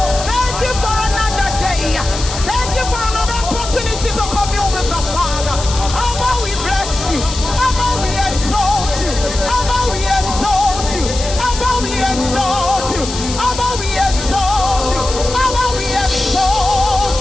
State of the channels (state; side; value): noise; left; hiss, 9 dB below the sound